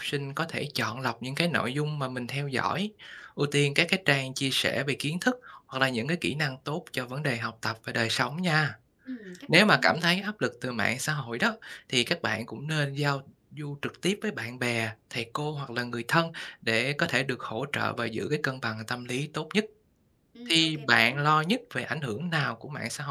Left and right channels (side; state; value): both; identical; correlation 1.00